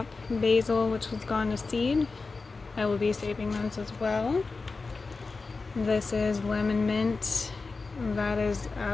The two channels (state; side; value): quieter; right; 4.0 dB